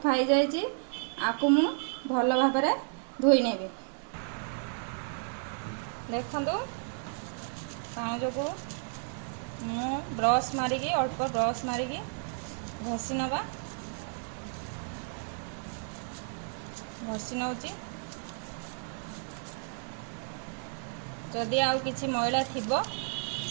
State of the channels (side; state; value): left; silent; 56 dB below the other